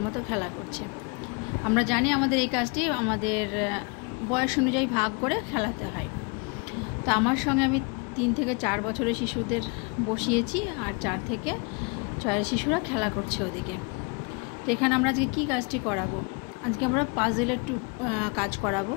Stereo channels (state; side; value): quieter; right; 32.4 dB